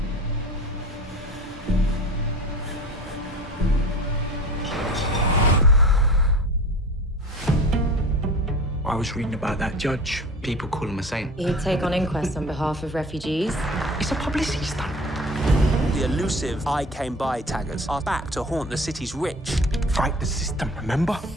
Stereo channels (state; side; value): normal; both; correlation 0.39